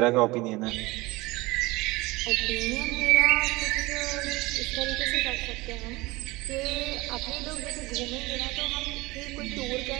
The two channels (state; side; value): quieter; left; 21.8 dB